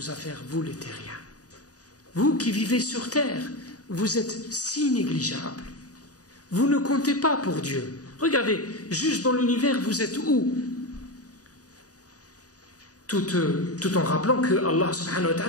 affaires, vous les terriens. Vous qui vivez sur terre, vous êtes si négligeables. Vous ne comptez pas pour Dieu. Regardez, juste dans l'univers, vous êtes où? Tout en rappelant que Allah subhanahu wa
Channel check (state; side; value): late; right; 0.67 ms